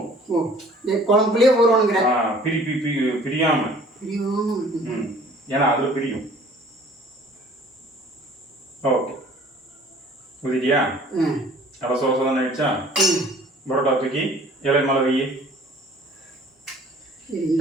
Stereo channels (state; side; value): normal; both; correlation 0.52